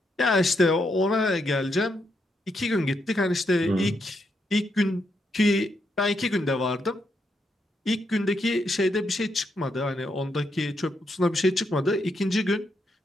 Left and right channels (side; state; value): both; normal; correlation 0.80